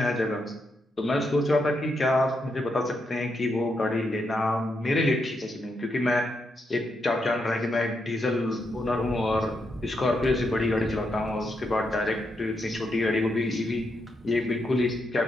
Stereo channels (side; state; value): both; normal; correlation 0.81